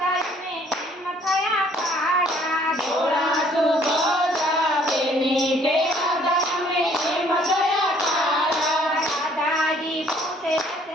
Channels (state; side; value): normal; both; correlation 0.61